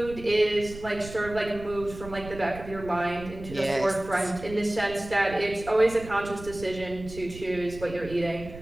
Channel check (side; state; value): right; noise; rumble, 14 dB below the sound